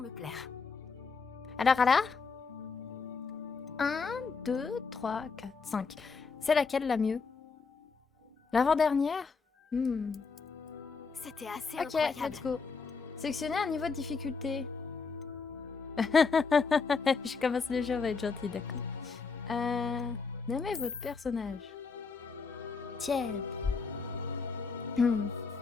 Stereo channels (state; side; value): quieter; right; 4.9 dB